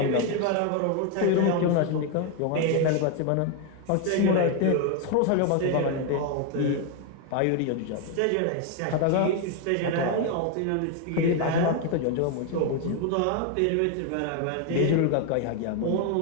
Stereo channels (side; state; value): both; different; correlation 0.01